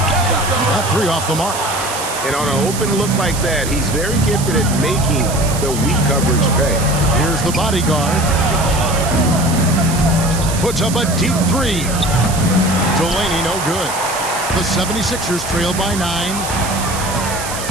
That 3 off the mark. And on an open look like that, he's very gifted at making the weak coverage pay. Here's the bodyguard. Puts up a deep 3. Delaney no good. The 76ers trail by 9.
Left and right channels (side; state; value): right; noise; hiss, 8 dB below the sound